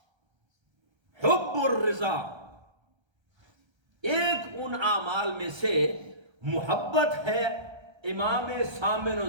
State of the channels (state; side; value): late; left; 1.3 ms